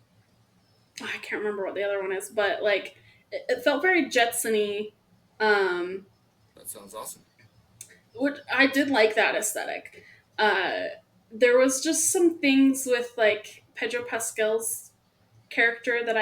I can't remember what the other one is, but like it felt very Jetsony. Um, That sounds awesome. which I did like that aesthetic. Uh, there was just some things with like Pedro Pascal's character that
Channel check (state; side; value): identical; both; correlation 1.00